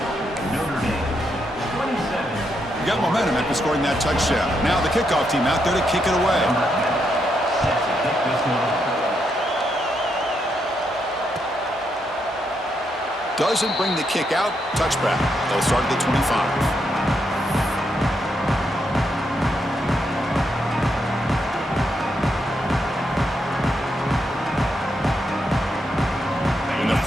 Got momentum after scoring that touchdown. Now the kickoff team out there to kick it away. Doesn't bring the kick out. Touchback. They'll start at the 25. In the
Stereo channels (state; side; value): normal; both; correlation 0.80